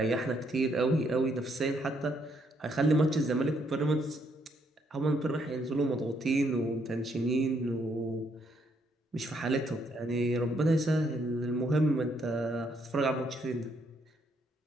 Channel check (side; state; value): both; normal; correlation 0.72